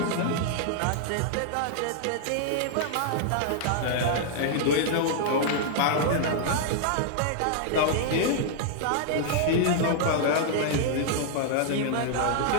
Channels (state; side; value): different; both; correlation -0.01